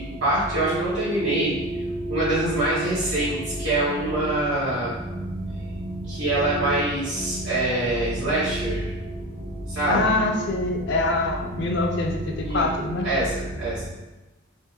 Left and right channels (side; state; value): both; normal; correlation 0.25